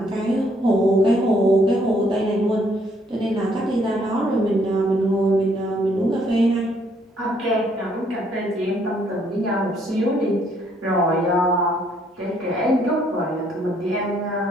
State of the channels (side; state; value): both; normal; correlation 0.68